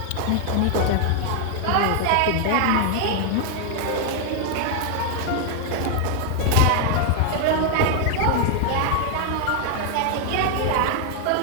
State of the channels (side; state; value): both; different; correlation 0.00